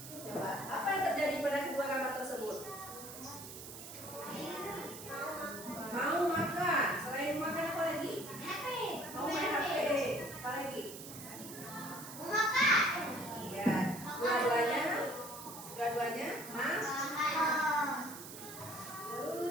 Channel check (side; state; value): right; noise; hiss, 12 dB below the sound